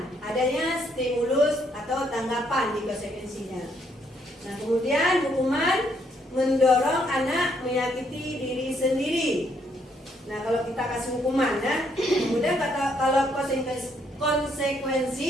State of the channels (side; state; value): both; normal; correlation 0.71